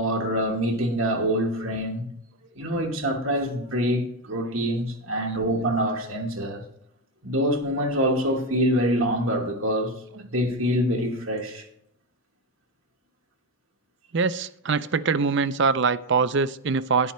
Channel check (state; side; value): normal; both; correlation 0.10